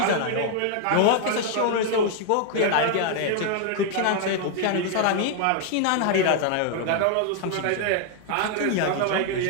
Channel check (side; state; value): both; different; correlation 0.00